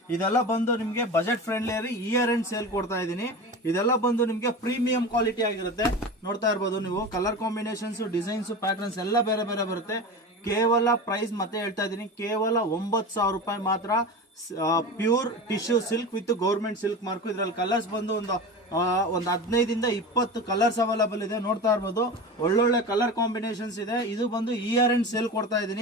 ಇದೆಲ್ಲ ಬಂದು ನಿಮ್ಗೆ budget friendly year end sale ಕೊಡ್ತಾ ಇದೀನಿ. ಇದೆಲ್ಲ ಬಂದು ನಿಮ್ಗೆ ಪ್ರೀಮಿಯಂ ಕ್ವಾಲಿಟಿ ಆಗಿರುತ್ತೆ. ನೋಡ್ತಾ ಇರ್ಬೋದು ನೀವು, ಕಲರ್ ಕಾಂಬಿನೇಷನ್ಸ್, ಡಿಸೈನ್ಸ್, ಪ್ಯಾಟರ್ನ್ಸ್ ಎಲ್ಲ ಬೇರೆ ಬೇರೆ ಬರುತ್ತೆ. ಕೇವಲ ಪ್ರೈಸ್ ಮತ್ತೆ ಹೇಳ್ತಾ ಇದೀನಿ, ಕೇವಲ 9,000 ರೂಪಾಯಿ ಮಾತ್ರ. Pure tissue silk with government silk mark. ಇದ್ರಲ್ಲಿ ಕಲರ್ಸ್ ಬಂದು ಒಂದು 15 ಇಂದ 20 ಕಲರ್ಸ್ ಅವೈಲಬಲ್ ಇದೆ. ನೋಡ್ತಾ ಇರ್ಬೋದು, ಒಳ್ಳೊಳ್ಳೆ ಕಲರ್ ಕಾಂಬಿನೇಷನ್ಸ್ ಇದೆ. ಇದು ಬಂದು ಇಯರ್ ಎಂಡ್ ಸೇಲ್ ಕೊಡ್ತಾ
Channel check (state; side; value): normal; both; correlation 0.29